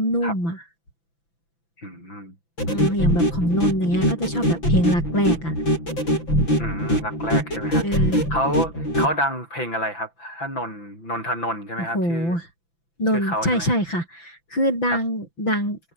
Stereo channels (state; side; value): late; right; 5.9 ms